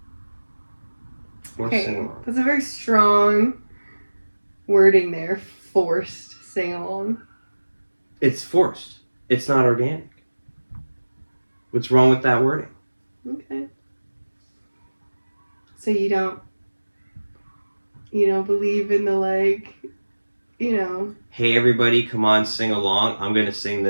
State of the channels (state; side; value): inverted; both; correlation -1.00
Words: Okay, that's a very strong wording there. Forced sing-along. It's forced. It's not organic. What's wrong with that wording? Okay. So you don't believe in the Hey everybody, come on, sing along. I'm going to sing